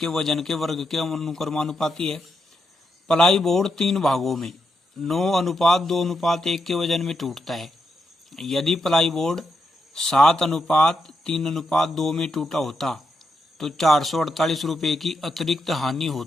वजन के वर्ग के अनुक्रमानुपाती है। प्लाई बोर्ड 3 भागों में 9:2:1 के वजन में टूटता है। यदि प्लाई बोर्ड 7:3:2 में टूटा होता तो 448 रुपये की अतिरिक्त हानि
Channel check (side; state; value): both; normal; correlation 0.83